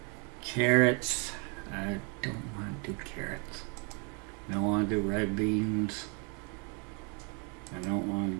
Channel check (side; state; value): left; quieter; 35.1 dB